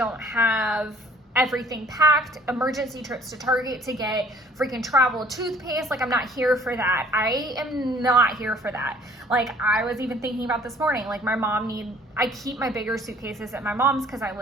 have everything packed. Emergency trips to Target to get freaking travel toothpaste. Like, I'm not here for that. I am not here for that. Like, I was even thinking about this morning, like I keep my bigger suitcases at my mom's because I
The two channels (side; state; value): both; normal; correlation 0.56